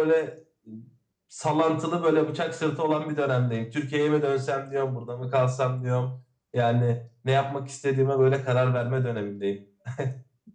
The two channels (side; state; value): both; identical; correlation 1.00